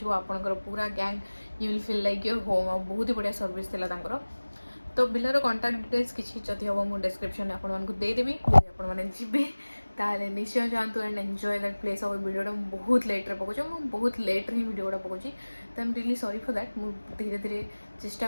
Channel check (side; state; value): both; inverted; correlation -1.00